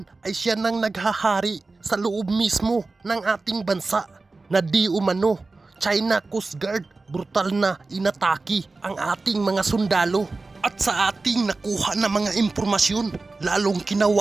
ay siya nang naghahari sa loob mismo ng ating bansa na di umano China Coast Guard brutal na inatake ang ating mga sundalo. At sa ating nakuha na mga impormasyon, lalong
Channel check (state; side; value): quieter; left; 3.6 dB